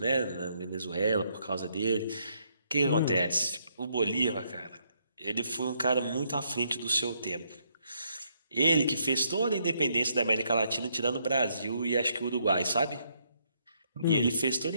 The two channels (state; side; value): inverted; both; correlation -0.73